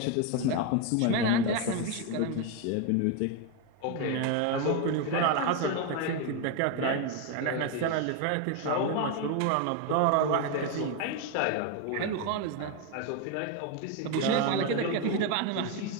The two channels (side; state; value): both; different; correlation 0.02